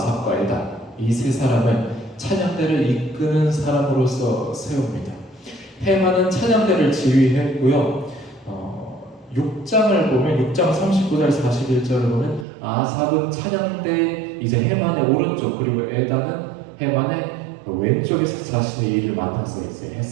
에단 이 세 사람을 찬양대를 이끄는 사람으로서 세웁니다. 헤만은 찬양대를 지휘했고요. 6장을 보면 6장 39절 41절을 보면 아삽은 찬양대 이제 헤만의 오른쪽 그리고 에단은 헤만의 왼쪽에서 자신의 일을 맡아서 이제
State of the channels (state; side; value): drops out; left; at 12.5 s